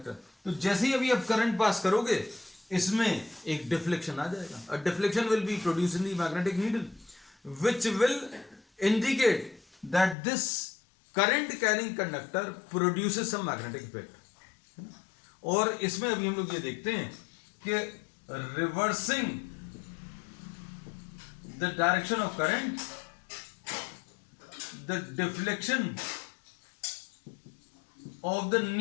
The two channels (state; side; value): drops out; right; at 10.2 s